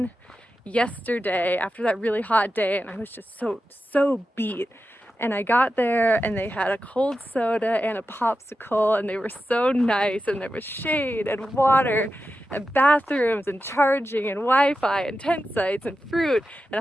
yesterday after that really hot day and I was just so beat. And I got there and they had a cold soda and a popsicle and they were so nice, and there was shade and water and bathrooms and charging and Wi-Fi and tent sites and fruit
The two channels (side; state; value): both; normal; correlation 0.91